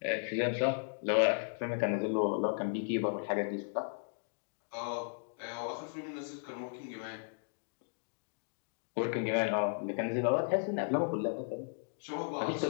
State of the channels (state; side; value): silent; right; digital silence